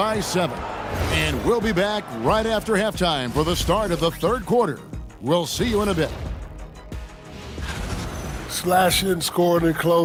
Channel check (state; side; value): identical; both; correlation 1.00